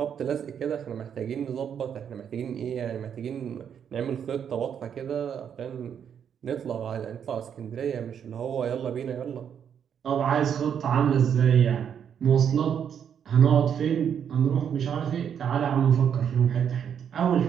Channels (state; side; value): quieter; left; 8.2 dB